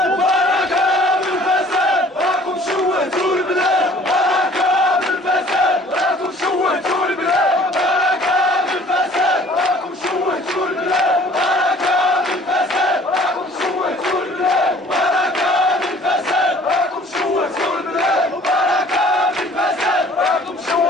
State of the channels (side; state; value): both; normal; correlation 0.53